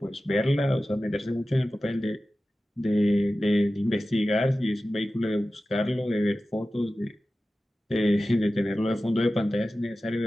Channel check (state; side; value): normal; both; correlation 0.95